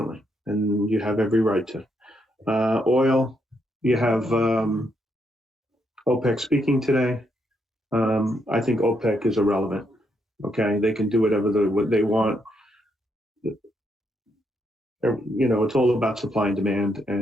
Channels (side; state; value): both; normal; correlation 0.77